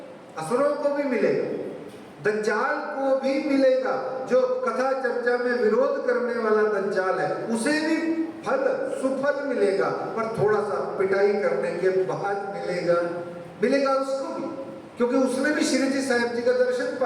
असुरों को भी मिलेगा, दज्जाल को भी मिलेगा। जो कथा चर्चा में विरोध करने वाला दज्जाल है उसे भी फल सुफल मिलेगा, पर थोड़ा सा पिटाई करने के बाद मिलेगा उसको भी, क्योंकि उसने भी श्री जी साहिब जी का दर्शन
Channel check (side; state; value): both; identical; correlation 1.00